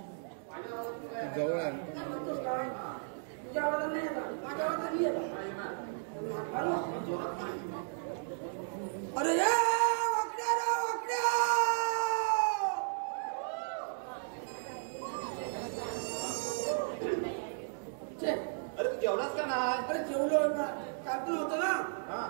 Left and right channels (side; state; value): left; silent; digital silence